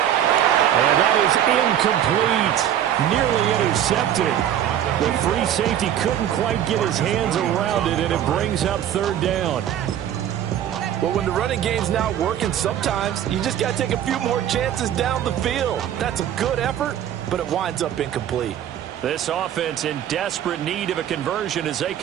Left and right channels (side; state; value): left; quieter; 10.6 dB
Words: And that is incomplete. Nearly intercepted. The free safety couldn't quite get his hands around it, and it brings up 3rd down. Well, when the running game's not working, sometimes you just got to take a few more chances down the field. That's a good effort, but it winds up incomplete. This offense in desperate need of a conversion as they